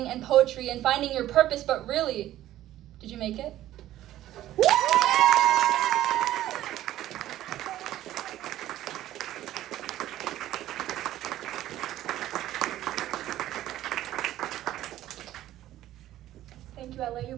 and poetry and finding your purpose. But really, did you make it? Thank you, LA. You've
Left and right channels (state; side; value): quieter; left; 13.7 dB